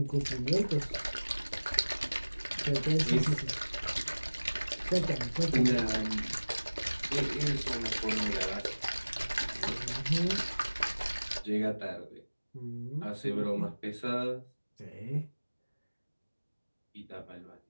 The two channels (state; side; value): inverted; both; correlation -1.00